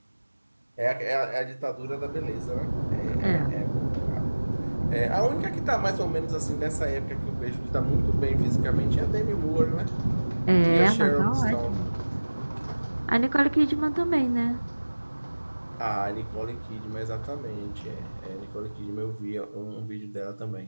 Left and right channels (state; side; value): inverted; both; correlation -1.00